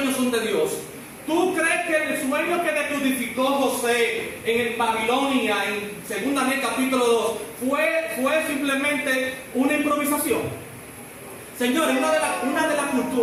son de Dios. ¿Tú crees que el sueño que decodificó José en Babilonia, en 2 Reyes capítulo 2, fue simplemente una improvisación? Señores, una de las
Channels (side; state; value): both; identical; correlation 1.00